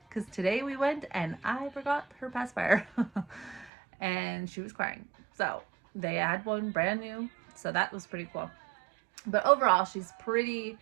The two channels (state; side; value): drops out; left; at 3.7 s